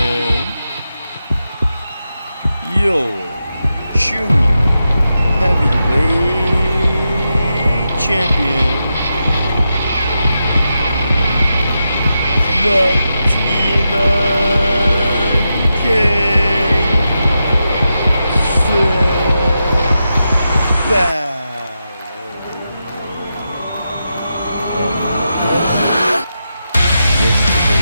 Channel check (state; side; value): inverted; both; correlation -0.88